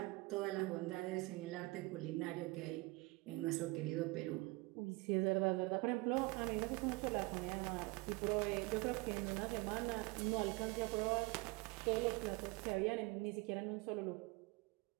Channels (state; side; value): quieter; left; 24.2 dB